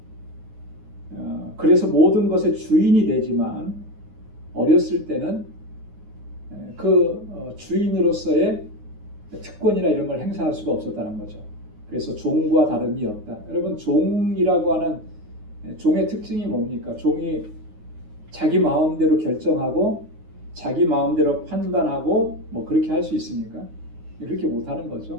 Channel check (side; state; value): left; late; 9.5 ms